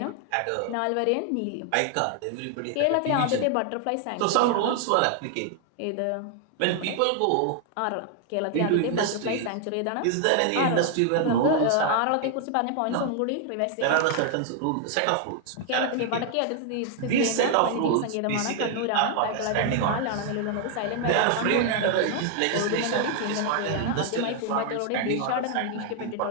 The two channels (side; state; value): both; different; correlation 0.00